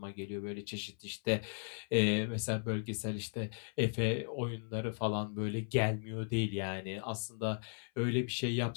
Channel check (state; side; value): silent; right; 53 dB below the other